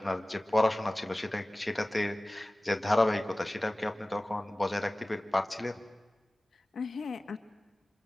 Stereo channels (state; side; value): normal; both; correlation 0.98